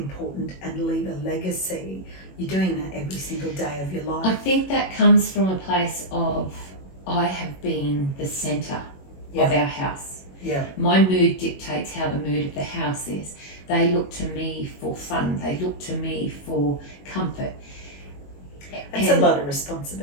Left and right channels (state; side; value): late; right; 21 ms